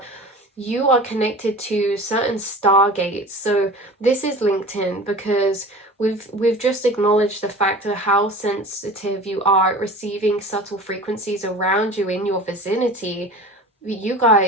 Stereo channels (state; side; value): normal; both; correlation 0.38